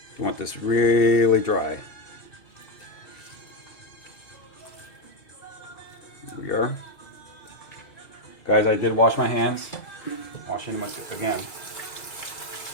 You want this really dry. Here we are. Guys, I did wash my hands. Washing them again.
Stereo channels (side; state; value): right; late; 2.3 ms